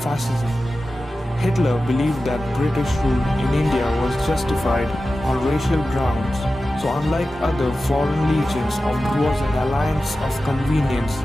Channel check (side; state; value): both; normal; correlation 0.94